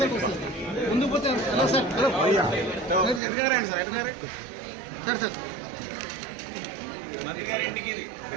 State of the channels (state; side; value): drops out; left; at 3.2 s